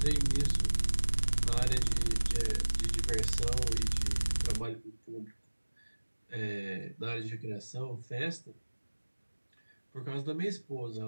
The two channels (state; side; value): inverted; both; correlation -1.00